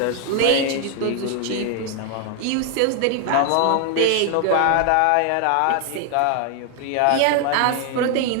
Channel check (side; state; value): both; different; correlation 0.00